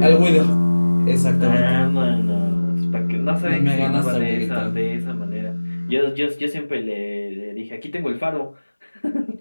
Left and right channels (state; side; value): inverted; both; correlation -1.00